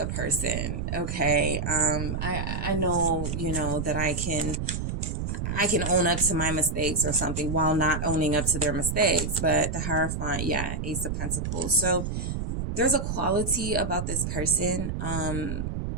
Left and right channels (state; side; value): noise; right; rumble, 3 dB below the sound